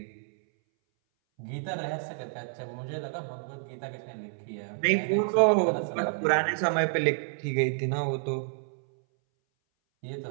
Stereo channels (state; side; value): silent; left; 58 dB below the other